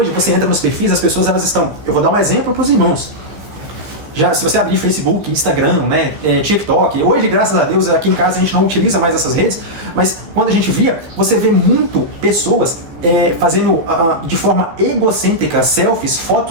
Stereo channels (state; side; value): late; left; 15 ms